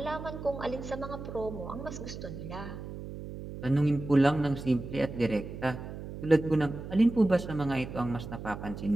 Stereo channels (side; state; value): right; noise; hum, 10 dB below the sound